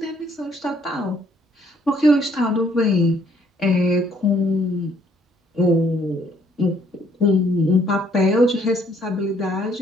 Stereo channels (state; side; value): normal; both; correlation 0.66